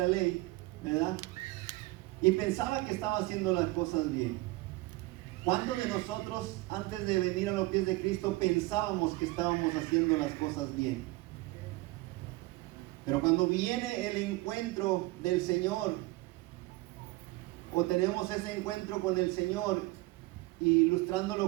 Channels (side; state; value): left; quieter; 20.8 dB